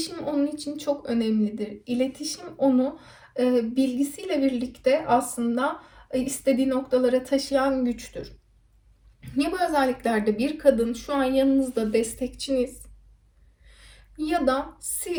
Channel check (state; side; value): identical; both; correlation 1.00